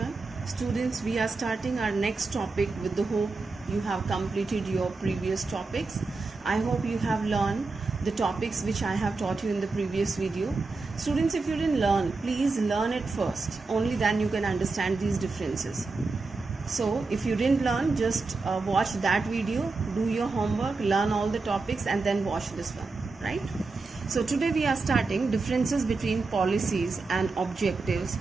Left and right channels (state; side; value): quieter; left; 3.9 dB